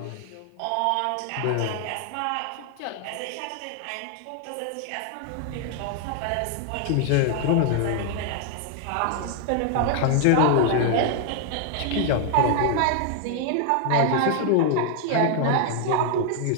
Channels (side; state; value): both; different; correlation 0.00